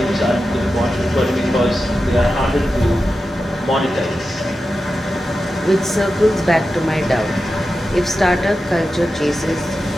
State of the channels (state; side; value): normal; both; correlation 0.91